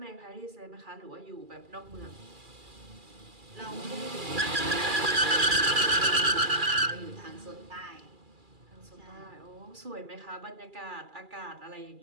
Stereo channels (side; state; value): left; late; 2.4 ms